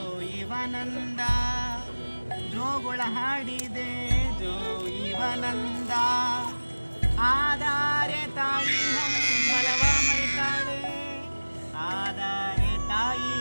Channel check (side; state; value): both; inverted; correlation -1.00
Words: ಇವನಂದ ಜೋಗುಳ ಹಾಡಿದೆ ಜೋ ಇವನಂದ ಆಧಾರೆ ತಾಯಿ ಹಂಬಲವ ಮರಿತಾಳೆ ಆಧಾರೆ ತಾಯಿ